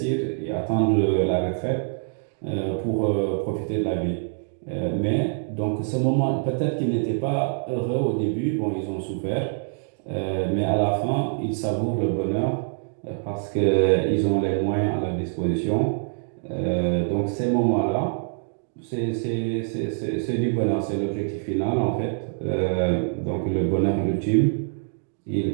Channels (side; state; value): left; silent; 62 dB below the other